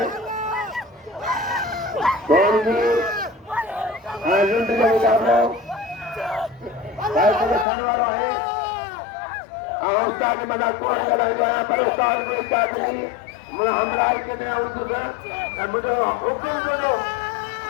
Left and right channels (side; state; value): right; drops out; at 7.7 s